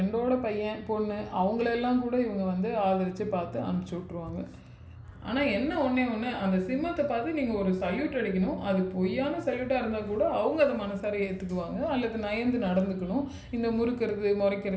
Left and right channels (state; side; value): identical; both; correlation 1.00